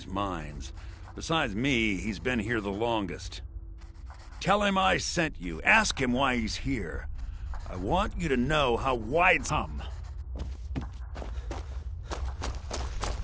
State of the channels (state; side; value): identical; both; correlation 1.00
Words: mines. Besides me, he's been here the longest. Tell him I sent you. Ask him why he's here. I want you to know how wide some.